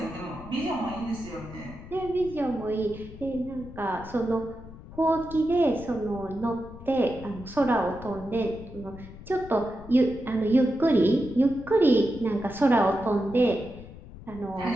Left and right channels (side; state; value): left; noise; rumble, 16 dB below the sound